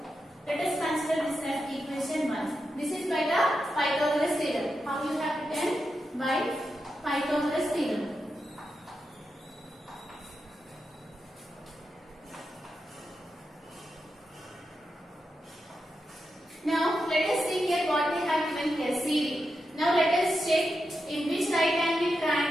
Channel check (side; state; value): both; normal; correlation 0.87